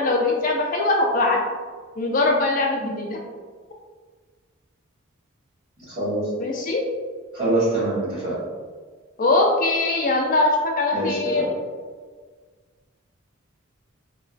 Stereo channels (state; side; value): normal; both; correlation -0.03